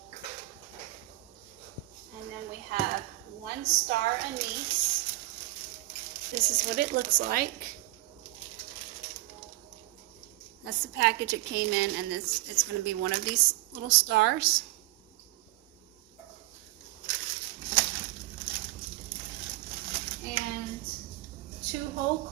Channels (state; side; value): quieter; left; 19.3 dB